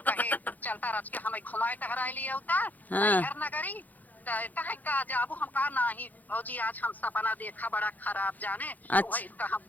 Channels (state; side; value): late; right; 0.081 ms